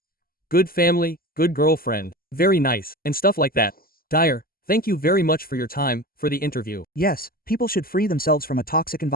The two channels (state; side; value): late; right; 0.42 ms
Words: Good family, good girlfriend, very nice, and stuff like that. Dyer, thank you very much for your time, for the interview. Yes, people should free themselves from a toxic